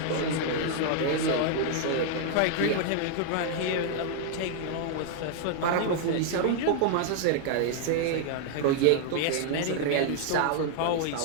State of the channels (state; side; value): different; both; correlation 0.00